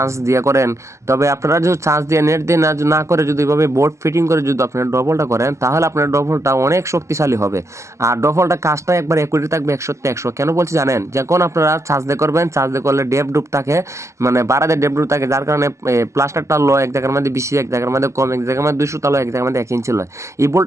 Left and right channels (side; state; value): left; late; 0.14 ms